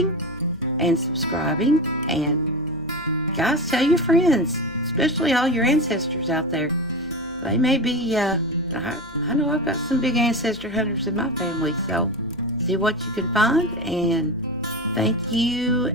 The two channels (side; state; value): left; noise; hum, 23 dB below the sound